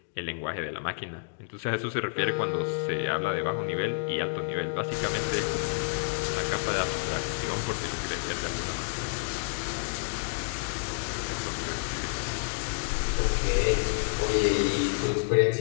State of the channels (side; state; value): right; silent; digital silence